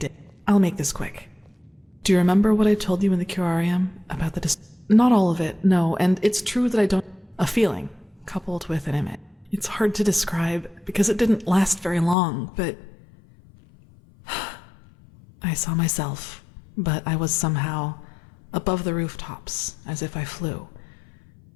I'll make this quick. Do you remember what I told you in the curarium about the Not all of it, no, and it's true that I don't... A feeling, coupled with an image. It's hard to describe because it didn't last very long, but... I saw myself, but I was somehow above the rooftops, as if I flew.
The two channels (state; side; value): drops out; right; at 12.2 s